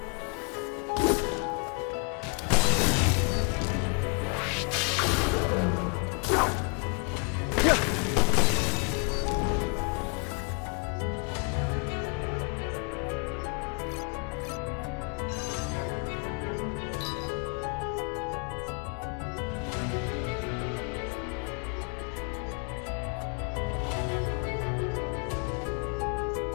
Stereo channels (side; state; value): right; quieter; 35.7 dB